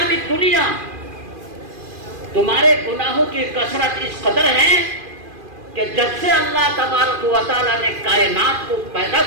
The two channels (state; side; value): late; left; 2.4 ms